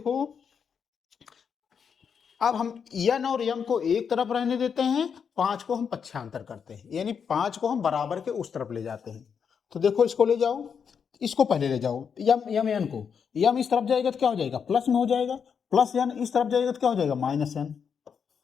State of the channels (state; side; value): quieter; right; 6.8 dB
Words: अब हम n और m को एक तरफ रहने देते हैं, 5 को हम पक्षांतर करते हैं, यानी 5 को हम बराबर के उस तरफ ले जाते हैं। तो देखो इसको ले जाओ, इसको पहले ले जाओ, यम n को, यम इस तरफ जाएगा तो क्या हो जाएगा, प्लस में हो जाएगा, प्लस n इस तरफ जाएगा तो क्या हो जाएगा, माइनस n।